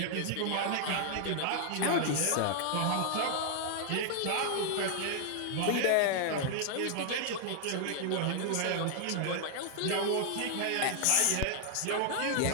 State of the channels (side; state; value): both; different; correlation 0.00